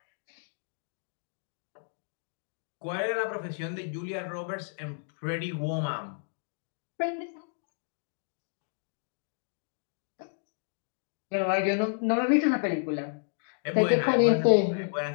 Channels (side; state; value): right; silent; digital silence